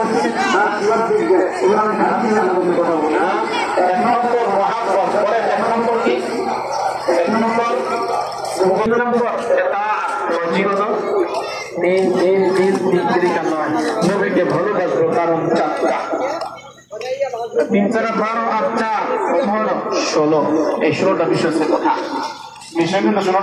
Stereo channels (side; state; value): both; identical; correlation 1.00